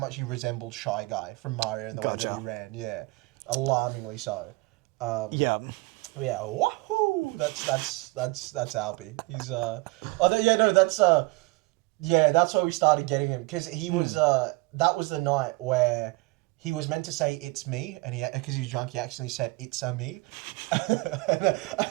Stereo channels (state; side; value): quieter; left; 25.0 dB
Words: he resembled Shy Guy from Mario in the way that he ran. Yeah, alarmingly so. Yeah. Yeah, wahoo! That's Albie. He's that's why we started getting him, because he was that was the night where he was meant to say "it's me," and because he was drunk, he accidentally said "it's a me," and